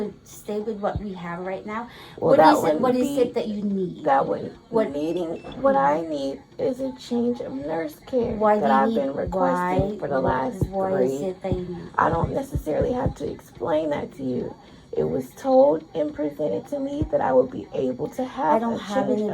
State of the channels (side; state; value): both; identical; correlation 1.00